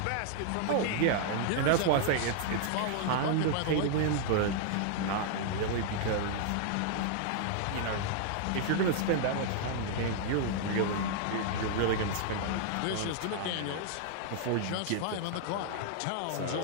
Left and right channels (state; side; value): different; both; correlation -0.01